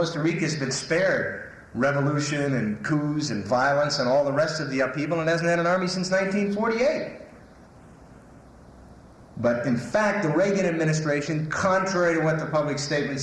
Rica's been spared revolution and coups and violence and all the rest of the upheaval, and hasn't had an army since 1948. But in fact, the Reagan administration, contrary to what the public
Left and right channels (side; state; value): both; identical; correlation 1.00